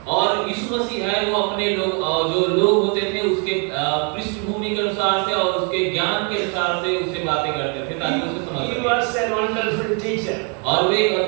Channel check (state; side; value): quieter; left; 37.8 dB